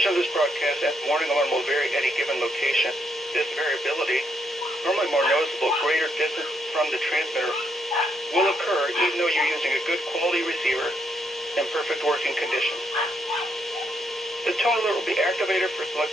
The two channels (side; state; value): both; normal; correlation 0.76